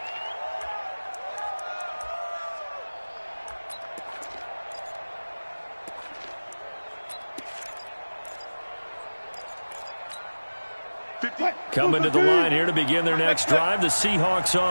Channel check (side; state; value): both; inverted; correlation -1.00